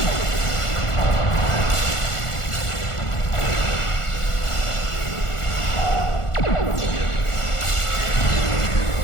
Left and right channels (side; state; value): right; late; 1.4 ms